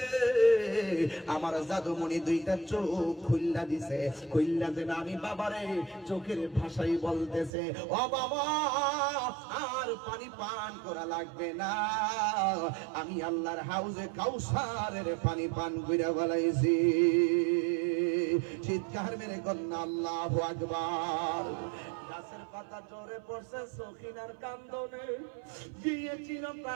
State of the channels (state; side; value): drops out; left; at 7.5 s